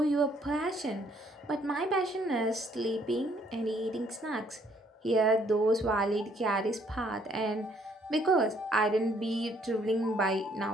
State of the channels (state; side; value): normal; both; correlation 0.66